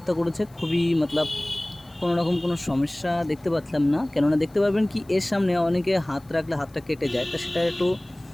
করেছে, খুবই মতলব কোনো রকম কোনো সমস্যা দেখতে পাচ্ছিলাম না। কেননা দেখতে পারবেন কি এর সামনে অনেকে হাত রাখলে হাতটা কেটে যায়, তা সেটা একটু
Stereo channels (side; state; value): left; noise; hiss, 29 dB below the sound